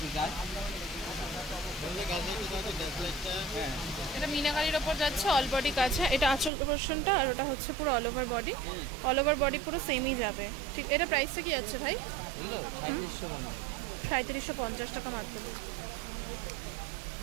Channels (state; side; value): drops out; left; at 6.5 s